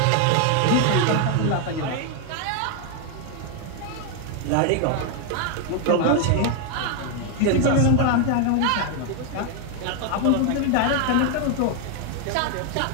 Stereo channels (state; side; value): different; both; correlation 0.01